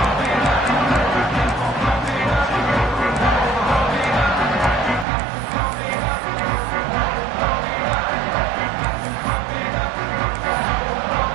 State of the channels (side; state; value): left; drops out; at 5.1 s